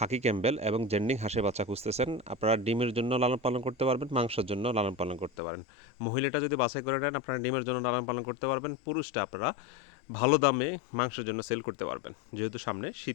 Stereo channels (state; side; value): drops out; right; at 5.3 s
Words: ক্যাম্বেল এবং জেন্ডিং হাঁসের বাচ্চা খুঁজতেছেন, আপনারা ডিমের জন্য লালন পালন করতে পারবেন, মাংসের জন্য লালন পালন করতে পারেন। মহিলাটা যদি বাছাই করে নেন, আপনারা ডিমের জন্য লালন পালন করতে পারবেন। পুরুষটা আপনারা ভালো দামে মাংসের জন্য সেল করতে পারবেন, যেহেতু সামনে